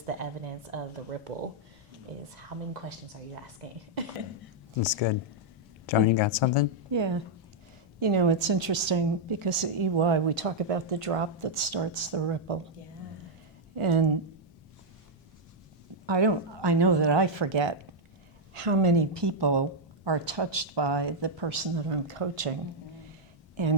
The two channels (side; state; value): both; normal; correlation -0.03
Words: the evidence of the ripple, is how many questions are you asking? That's good. Joan, you got something? Yeah. It's interesting because at EY we talk about the drop that starts the ripple. Yeah. And I know that I forget how many people are touched by the person that I'm coaching,